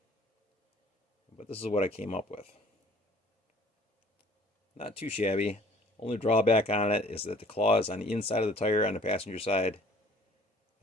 But this is what I came up with. Not too shabby. Only drawback on it is that the claw is on the inside of the tire on the passenger side,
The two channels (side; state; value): both; normal; correlation 0.53